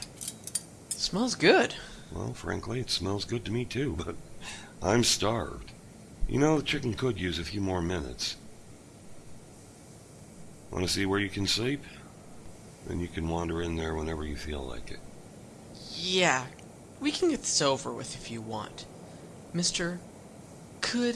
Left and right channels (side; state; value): both; identical; correlation 1.00